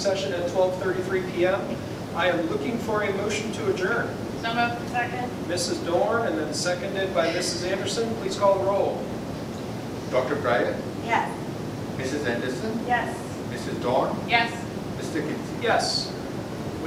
at 12:33 PM. I am looking for a motion to adjourn. So moved. Second. Mrs. Dorn, and then seconded by Mrs. Anderson. Please call the roll. Dr. Breyer, Yes. Mrs. Anderson, Yes. Mrs. Dawn, Yes. Mr. Kinsey. Yes.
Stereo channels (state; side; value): identical; both; correlation 1.00